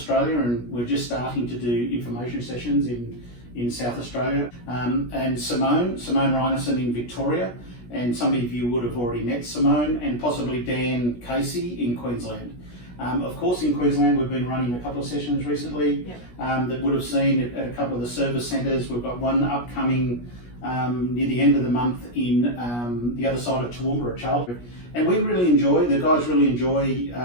and we're just starting to do information sessions in South Australia, and Simone Reinerson in Victoria, and some of you would have already met Simone, and possibly Dan Casey in Queensland. Of course, in Queensland we've been running a couple of sessions recently. Yep. That would have seen at a couple of the service centres. We've got one upcoming near the end of the month in the other side of Toowoomba at Charlton. And we really enjoy, the guys really enjoy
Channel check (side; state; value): right; late; 17 ms